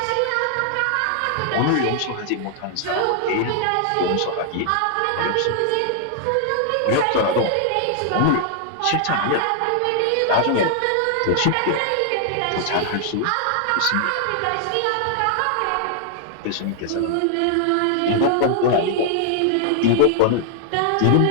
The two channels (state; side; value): different; both; correlation 0.00